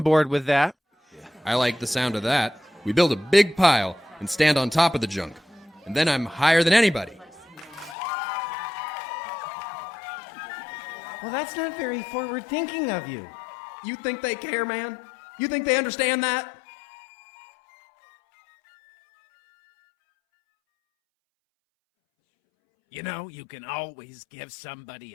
board with that. I like the sound of that. We build a big pile and stand on top of the junk. And then I'm higher than anybody. Well, that's not very forward thinking of you. You think they care, man? You think they understand that? You know, you can always give somebody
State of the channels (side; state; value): right; drops out; at 8.0 s